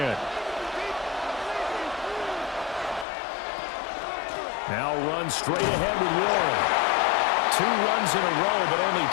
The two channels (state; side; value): drops out; right; at 3.1 s